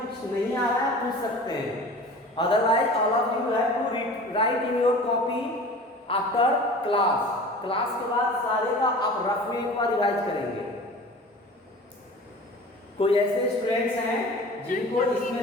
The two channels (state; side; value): normal; both; correlation 0.40